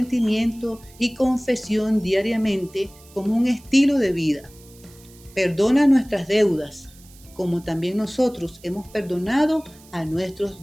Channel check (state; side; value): noise; right; hiss, 25 dB below the sound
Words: y confesión diariamente como un estilo de vida. Perdona nuestras deudas, como también nosotros hemos perdonado a nuestros